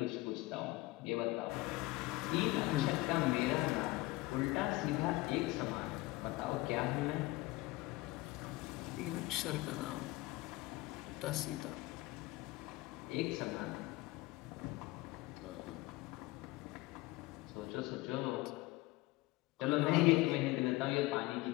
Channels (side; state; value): right; quieter; 20.1 dB